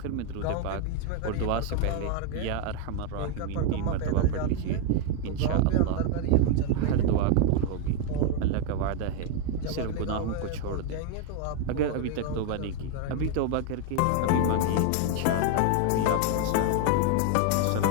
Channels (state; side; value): different; both; correlation 0.01